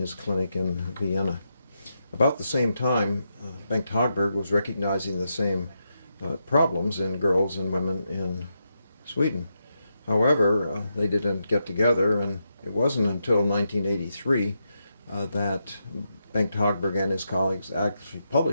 clinic in Vienna. About the same time, Bengt Hagberg was recognizing the same problems in girls and women in Sweden. However, they didn't get together, and it wasn't until 1983 that Bengt Hagberg and his colleagues actually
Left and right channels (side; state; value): both; inverted; correlation -0.84